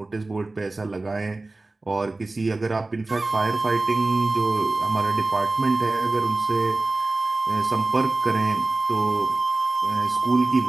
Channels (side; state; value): left; quieter; 3.1 dB